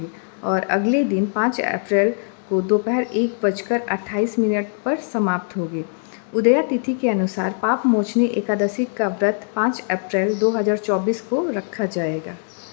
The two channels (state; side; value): silent; right; 62 dB below the other